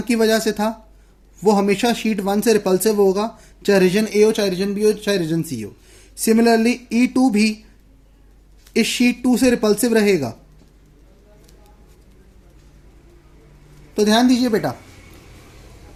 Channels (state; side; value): identical; both; correlation 1.00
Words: की वजह से था, वो हमेशा शीट 1 से रिपल्सिव होगा, चाहे रीजन ए हो, चाहे रीजन बी हो, चाहे रीजन सी हो. सिमिलरली E2 भी इस शीट 2 से रिपल्सिव रहेगा. तो ध्यान दीजिए बेटा,